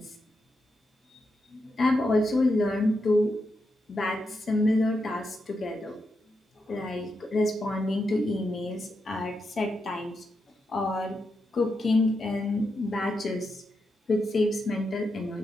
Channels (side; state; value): both; normal; correlation 0.85